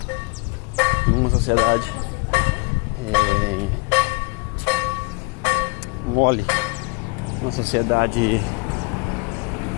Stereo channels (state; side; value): quieter; right; 30.0 dB